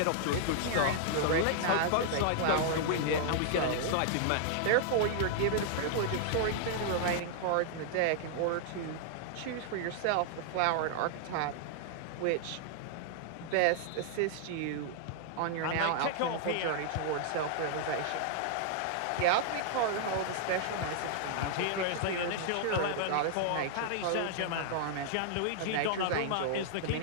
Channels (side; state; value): both; different; correlation -0.01